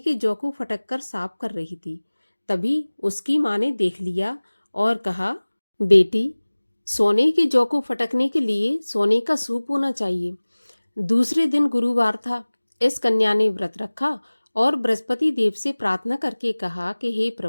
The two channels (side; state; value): both; inverted; correlation -1.00